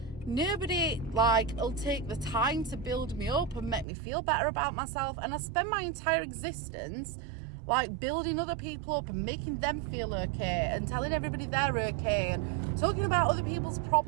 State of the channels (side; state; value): left; drops out; at 3.9 s